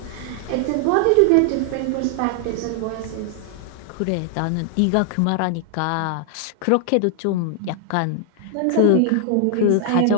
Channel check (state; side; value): different; both; correlation 0.00